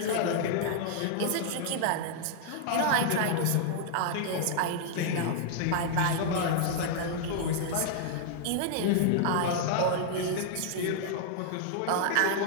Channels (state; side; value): different; both; correlation 0.00